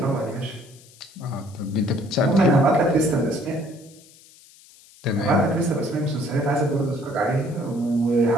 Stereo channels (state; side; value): noise; left; hiss, 25 dB below the sound